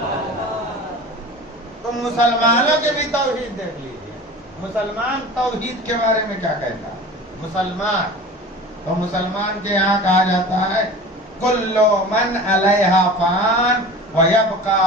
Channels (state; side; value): normal; both; correlation 0.37